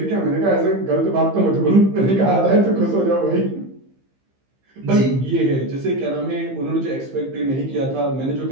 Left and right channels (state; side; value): late; left; 15 ms